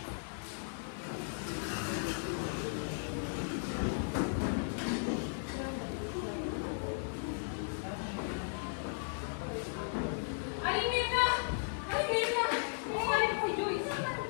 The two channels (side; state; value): right; silent; digital silence